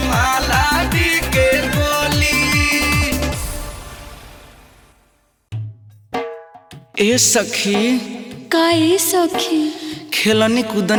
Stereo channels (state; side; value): identical; both; correlation 1.00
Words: माला दी के गोली। ए सखी काहे सखी खेलनी